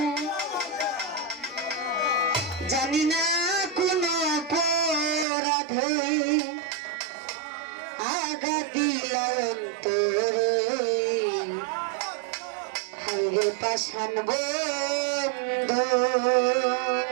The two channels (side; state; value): left; drops out; at 5.2 s